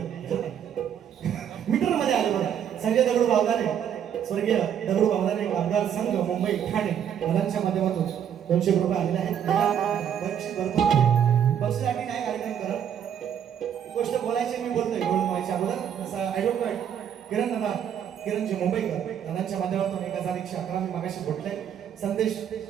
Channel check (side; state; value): left; quieter; 9.0 dB